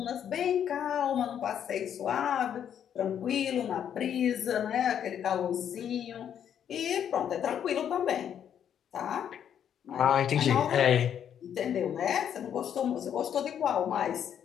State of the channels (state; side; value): quieter; right; 9.1 dB